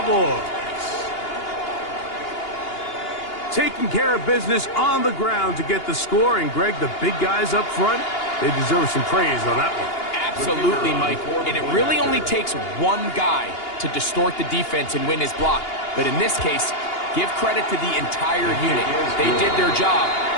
Taking care of business on the ground to get the score. And, Greg, the big guys up front, they deserve some praise on that one. Absolutely, Mike. And it really only takes one guy to distort the defense and win his block. But in this case, give credit to the entire unit. They did their job,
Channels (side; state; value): right; late; 2.8 ms